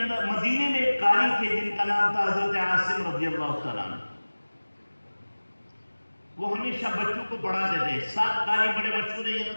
مدینے میں ایک قاری تھے جن کا نام تھا حضرت عاصم رضی اللہ تعالیٰ عنہ۔ وہ ہمیشہ بچوں کو پڑھاتے تھے۔ 7 قاری بڑے مشہور ہیں،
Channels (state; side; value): inverted; both; correlation -1.00